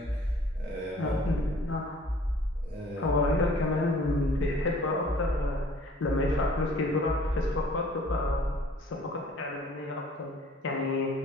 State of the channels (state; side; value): normal; both; correlation 0.53